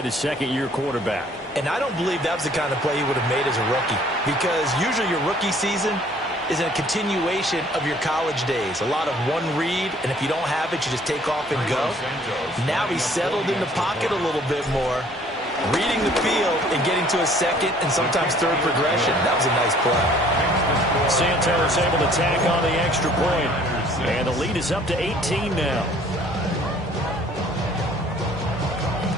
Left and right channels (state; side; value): normal; both; correlation 0.57